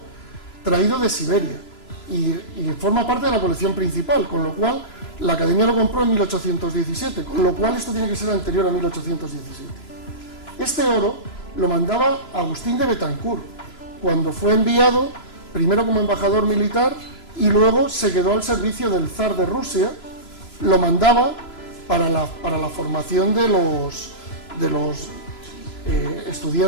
traído de Siberia. Y forma parte de la colección principal, con lo cual la Academia lo compró en 1817, con lo cual esto tiene que ser anterior a 1817. Este oro lo mandaba Agustín de Betancourt, cuando fue enviado primero como embajador militar y luego se quedó al servicio del zar de Rusia. Lo mandaba para la formación de los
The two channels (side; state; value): right; late; 3.0 ms